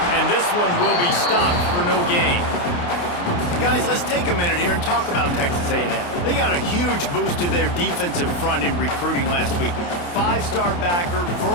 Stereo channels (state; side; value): late; right; 28 ms